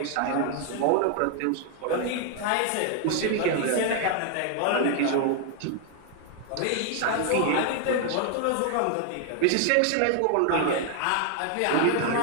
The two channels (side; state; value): both; different; correlation 0.00